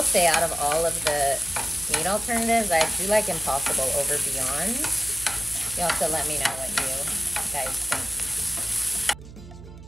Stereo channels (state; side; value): noise; right; hum, 16 dB below the sound